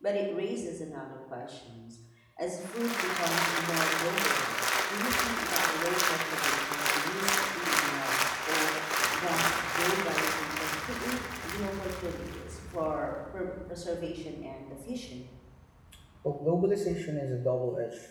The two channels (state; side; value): identical; both; correlation 1.00